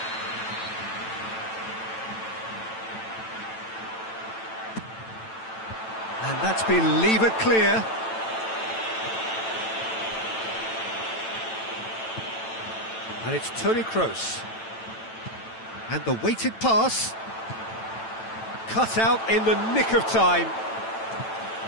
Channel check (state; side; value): late; right; 9.0 ms